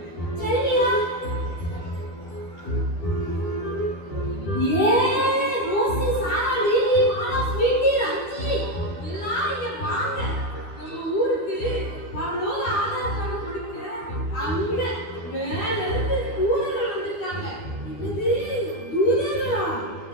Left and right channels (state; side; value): late; right; 12 ms